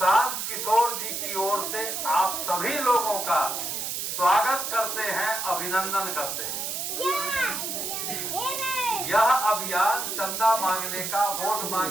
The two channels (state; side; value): noise; right; hiss, 3 dB below the sound